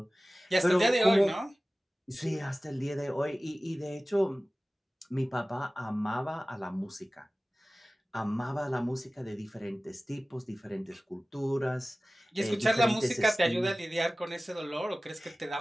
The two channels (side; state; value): both; normal; correlation 0.97